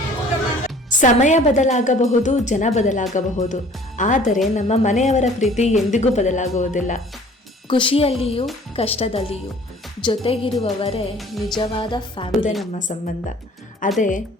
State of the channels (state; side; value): normal; both; correlation 0.51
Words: ಸಮಯ ಬದಲಾಗಬಹುದು, ಜನ ಬದಲಾಗಬಹುದು, ಆದರೆ ನಮ್ಮ ಮನೆಯವರ ಪ್ರೀತಿ ಎಂದಿಗೂ ಬದಲಾಗುವುದಿಲ್ಲ. ಖುಷಿಯಲ್ಲಿಯೂ ಕಷ್ಟದಲ್ಲಿಯೂ ಜೊತೆಗಿರುವವರೇ ನಿಜವಾದ ಫ್ಯಾಮಿಲಿ. ನಮ್ಮ ಸಂಬಂಧ ಅದೇ